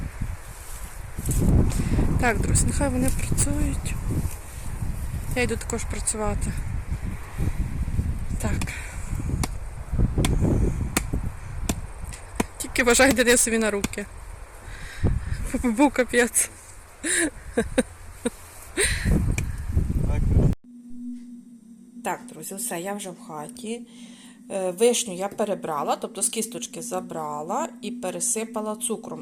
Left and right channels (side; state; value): both; identical; correlation 1.00